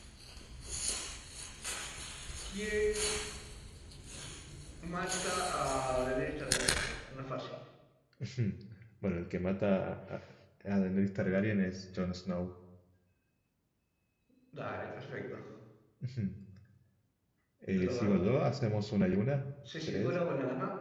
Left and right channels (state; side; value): identical; both; correlation 1.00